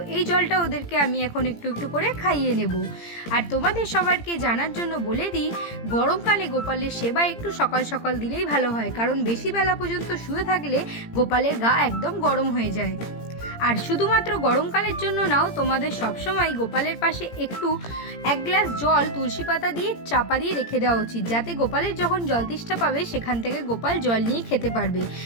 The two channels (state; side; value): late; right; 17 ms